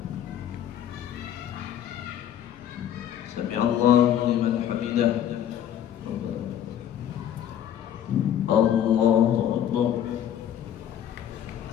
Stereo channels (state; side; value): quieter; right; 10.3 dB